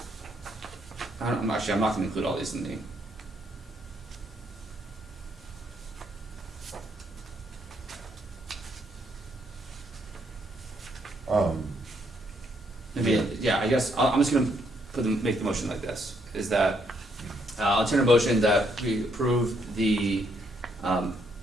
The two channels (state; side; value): normal; both; correlation 0.73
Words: I'm not gonna include all these in the. Maybe, yeah, I guess, I'm just gonna make the motion like this, is that, I'll enter a motion that we approve the,